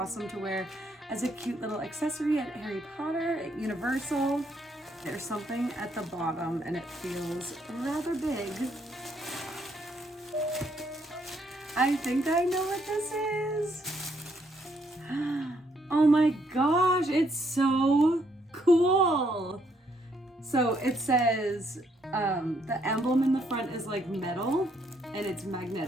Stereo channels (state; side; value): normal; both; correlation 0.72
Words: to wear as a cute little accessory at Harry Potter, at Universal. There's something at the bottom and it feels rather big. I think I know what this is. Oh my gosh, it's so cool. So it says the emblem in the front is metal and it's